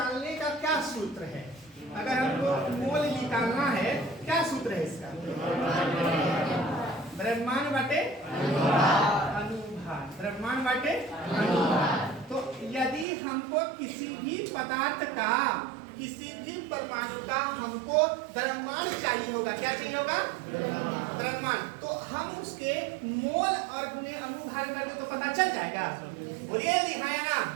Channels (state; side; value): drops out; left; at 13.1 s